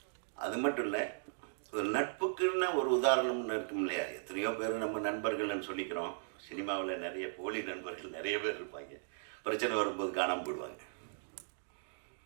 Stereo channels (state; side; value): silent; left; digital silence